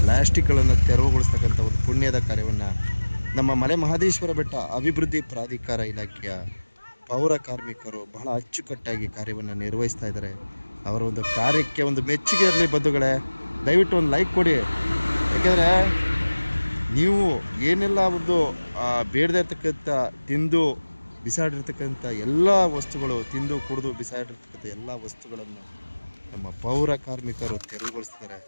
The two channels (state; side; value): inverted; both; correlation -1.00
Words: ಪ್ಲಾಸ್ಟಿಕ್ಗಳನ್ನು ತೆರವುಗೊಳಿಸ್ತಕ್ಕಂಥ ಒಂದು ಪುಣ್ಯದ ಕಾರ್ಯವನ್ನು ನಮ್ಮ ಮಲೆ ಮಹದೇಶ್ವರ ಬೆಟ್ಟ ಅಭಿವೃದ್ಧಿ ಪ್ರಾಧಿಕಾರ ಇಲಾಖೆಯ ಪೌರ ಕಾರ್ಮಿಕರು ಬಹಳ ಅಚ್ಚುಕಟ್ಟಾಗಿ ಕಾರ್ಯವನ್ನು ನಿರ್ವಹಿಸ್ತಾ ಇದ್ದಾರೆ. ಅವರ ಒಂದು ಕಾರ್ಯಕ್ಕೆ ಒಂದು ಮೆಚ್ಚುಗೆ ಇರಲಿ ಬಂಧುಗಳೇ. ದಯವಿಟ್ಟು ಒಂದು ಲೈಕ್ ಕೊಡಿ. ಯಾಕೆಂದರೆ ನೀವು ಏನೆಲ್ಲ ಒಂದು ಬೇಡದೇ ಇರ್ತಕ್ಕಂಥ ತಿಂದು ಬಿಸಾಡಿರ್ತಕ್ಕಂಥ ಎಲ್ಲ ವಸ್ತುಗಳು, ತಿಂದು ಕುಡಿದು ಬಿಸಾಡಿರ್ತಕ್ಕಂಥ ಎಲ್ಲ ವಸ್ತುಗಳನ್ನು ನಮ್ಮ ಪೌರ ಕಾರ್ಮಿಕರು ತೆರವುಗೊಳಿಸ್ತಾರೆ.